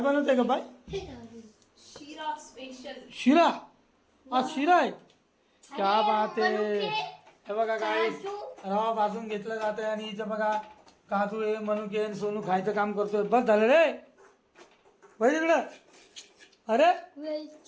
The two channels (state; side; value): identical; both; correlation 1.00